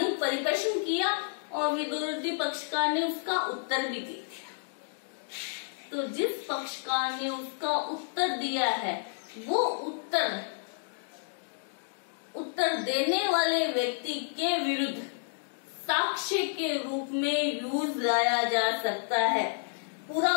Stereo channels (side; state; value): right; silent; digital silence